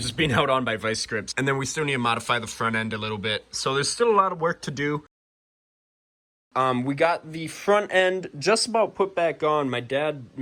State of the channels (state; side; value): identical; both; correlation 1.00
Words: being held on by vice grips. And then we still need to modify the front end a little bit. So there's still a lot of work to do. We got the front end just about put back on. My dad